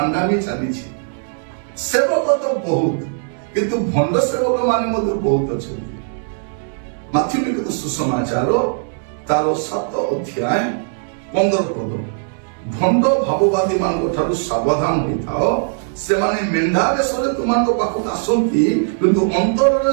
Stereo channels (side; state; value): left; silent; 66 dB below the other